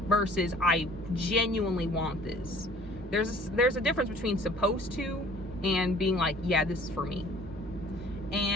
versus I genuinely want this. There's a difference between supposed to and being like, yeah, this is for me.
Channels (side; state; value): both; normal; correlation 0.51